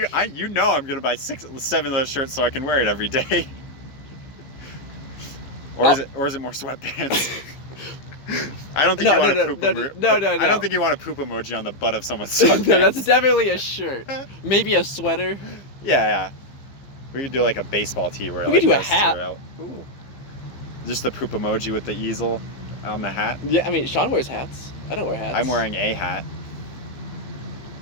know I'm going to buy 7 of those shirts so I can wear it every day. Or is it more sweatpants? I don't think you want to poop emoji. No. I don't think you want a poop emoji on the butt of someone's sweatpants. No, that's definitely a shirt. Maybe a sweater. Yeah. We could do like a baseball tee where We like could do a goes hat. throughout. Ooh. Just the poop emoji with the easel on the hat. Yeah, I mean, Sean wears hats. I don't wear hats. I'm wearing a hat.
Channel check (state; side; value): late; right; 15 ms